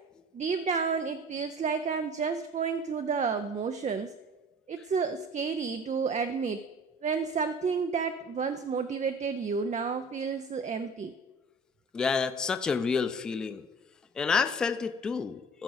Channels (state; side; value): normal; both; correlation 0.43